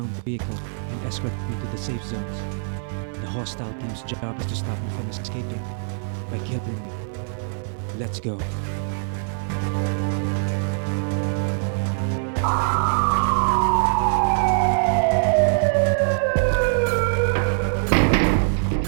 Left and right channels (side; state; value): left; silent; digital silence